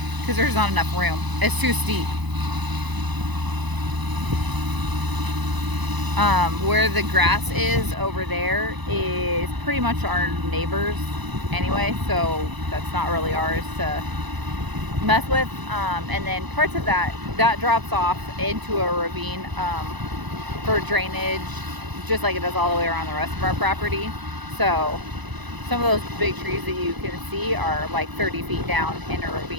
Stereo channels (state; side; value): late; left; 1.0 ms